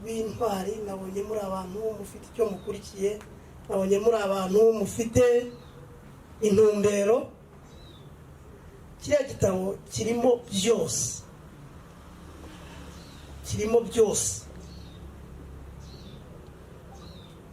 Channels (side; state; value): both; identical; correlation 1.00